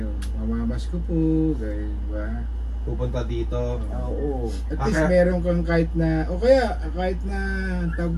Mamamas ko po, di ba? Pupunta dito. Oo. At Ah, least kaya- meron kang kahit na, o kaya kahit na tawag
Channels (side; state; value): both; identical; correlation 1.00